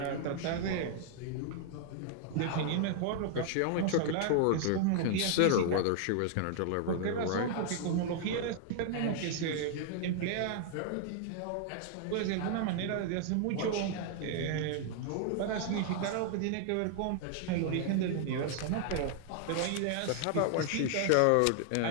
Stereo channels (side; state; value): both; different; correlation 0.00